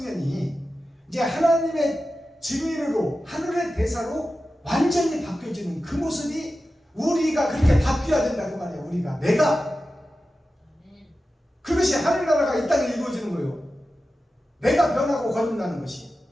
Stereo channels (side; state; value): both; normal; correlation 0.93